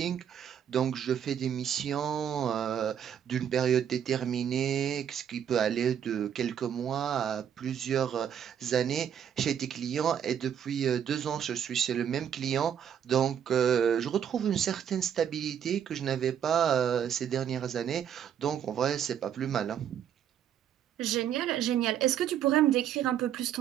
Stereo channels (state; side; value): quieter; left; 9.1 dB